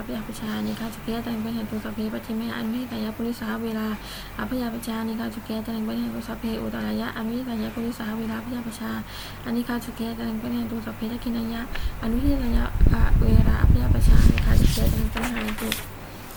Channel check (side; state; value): both; identical; correlation 1.00